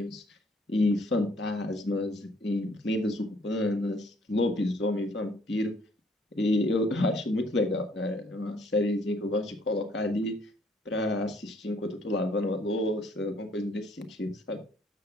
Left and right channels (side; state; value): both; normal; correlation 0.63